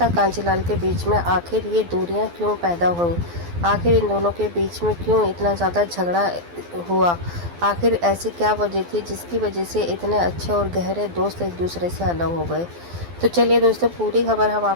कांजीलाल के बीच में आखिर ये दूरियां क्यों पैदा हुई। आखिर इन दोनों के बीच में क्यों इतना ज़्यादा झगड़ा हुआ। आखिर ऐसी क्या वजह थी जिसकी वजह से इतने अच्छे और गहरे दोस्त एक दूसरे से अलग हो गए। तो चलिए दोस्तों, पूरी खबर हम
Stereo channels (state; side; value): late; left; 12 ms